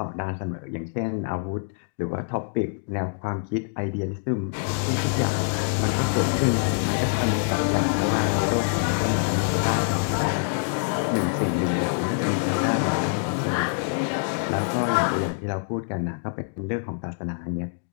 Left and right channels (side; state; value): right; silent; digital silence